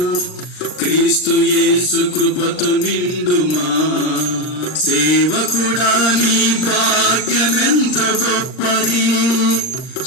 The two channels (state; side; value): late; right; 39 ms